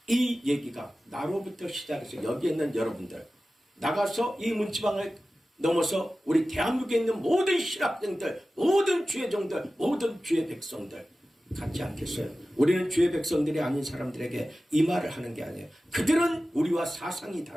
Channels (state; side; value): normal; both; correlation 0.95